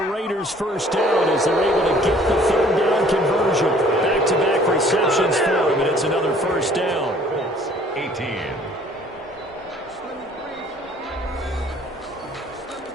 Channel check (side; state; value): both; normal; correlation 0.56